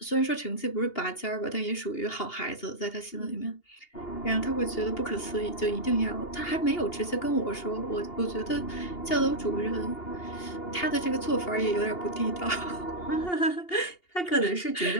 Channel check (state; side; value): late; right; 2.8 ms